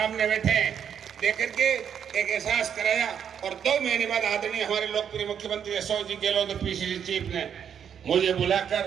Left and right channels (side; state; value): left; quieter; 8.2 dB